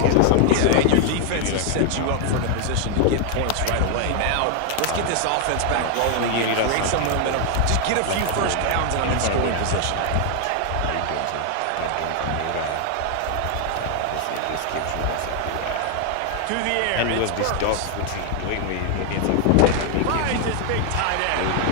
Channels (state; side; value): different; both; correlation 0.00